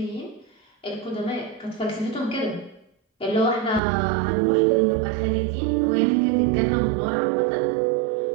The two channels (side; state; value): left; drops out; at 3.8 s